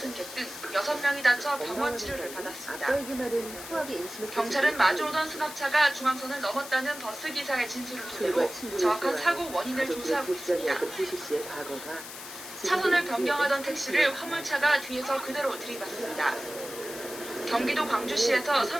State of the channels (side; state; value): left; noise; hiss, 12 dB below the sound